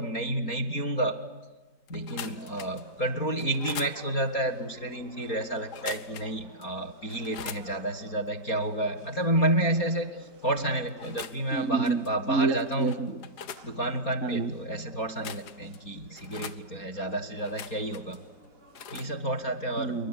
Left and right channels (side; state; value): right; late; 4.8 ms